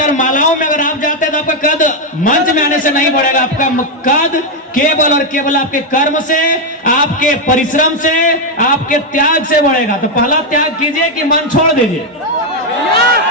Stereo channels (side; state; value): both; normal; correlation 0.03